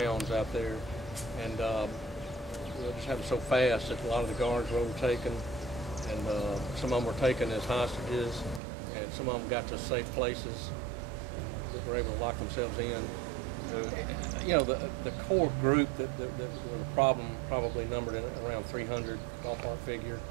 out there, and it just happened so fast that a lot of the guards were overtaken, and some of them were taken as hostages, and some of them got to safe places that were able to lock themselves in. The core group that was a problem probably numbered in around 300 ballpark figure.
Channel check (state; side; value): drops out; left; at 8.6 s